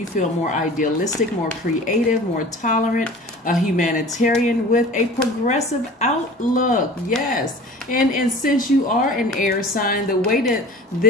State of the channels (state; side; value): normal; both; correlation 0.42